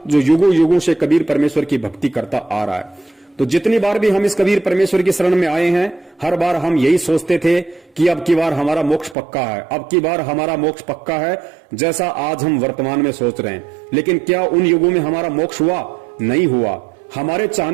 जो युगों युगों से कबीर परमेश्वर की भक्ति करता आ रहा है। तो जितनी बार भी हम इस कबीर परमेश्वर की शरण में आए हैं, हर बार हम यही सोचते थे कि अब की बार हमारा मोक्ष पक्का है, अब की बार हमारा मोक्ष पक्का है, जैसा आज हम वर्तमान में सोच रहे हैं। लेकिन क्या उन युगों में हमारा मोक्ष हुआ? नहीं हुआ। हमारे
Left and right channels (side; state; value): left; drops out; at 9.2 s